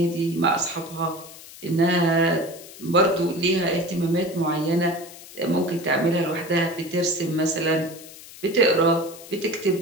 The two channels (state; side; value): noise; left; hiss, 17 dB below the sound